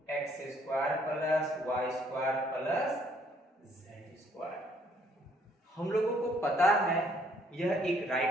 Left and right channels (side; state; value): both; normal; correlation 0.65